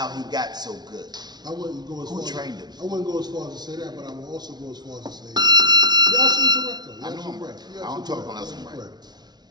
he got so good. I wouldn't go as Who trained him? I wouldn't go as far as to say that, but I would also go as far as to say, you're absolutely correct, though. I know I'm right. I don't talk unless I'm right.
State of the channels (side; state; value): left; late; 0.20 ms